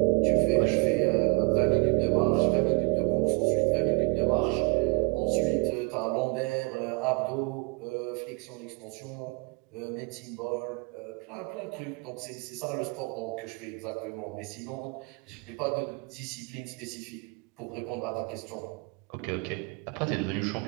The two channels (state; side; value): quieter; left; 32.2 dB